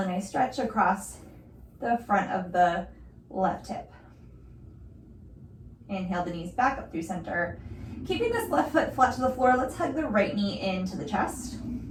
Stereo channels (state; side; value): identical; both; correlation 1.00